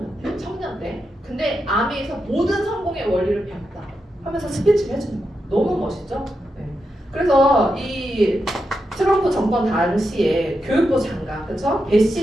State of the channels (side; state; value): both; normal; correlation 0.86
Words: 때. 근데 아메에서 모든 성공의 원리를 배웠다 하면서 스피치를 해주는 거예요. 너무 멋있죠? 네. 그래서 이 트럼프 정권 당시에 교육부 장관, 그렇죠?